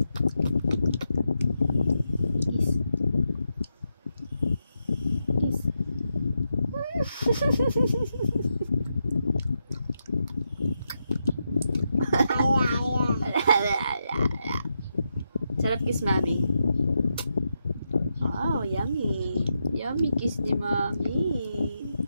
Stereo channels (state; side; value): inverted; both; correlation -0.85